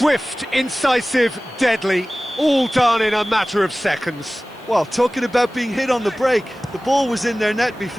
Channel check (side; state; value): right; noise; hiss, 30 dB below the sound